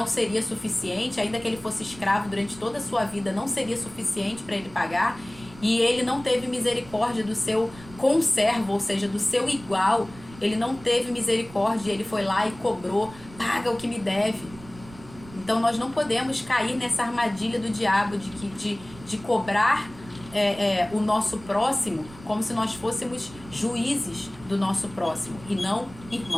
seria suficiente, ainda que ele fosse escravo durante toda a sua vida, não seria suficiente para ele pagar, e ele não teve misericórdia do seu conservo, ou seja, do seu igual, ele não teve misericórdia, ele foi lá e cobrou, paga o que me deve. Então nós não podemos cair nessa armadilha do diabo de cobrar o nosso próximo como se nós fôssemos juízes do nosso próximo e não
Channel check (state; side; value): noise; right; rumble, 19 dB below the sound